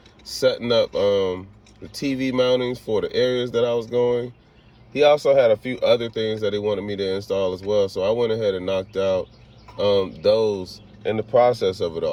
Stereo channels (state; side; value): identical; both; correlation 1.00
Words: setting up the TV mountings for the areas that I was going. He also had a few other things that he wanted me to install as well, so I went ahead and knocked out those in the process of it